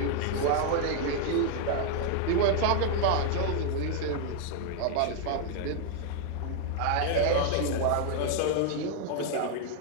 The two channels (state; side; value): different; both; correlation 0.00